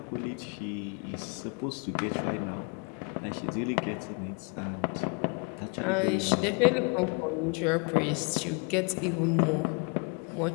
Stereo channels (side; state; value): right; quieter; 34.3 dB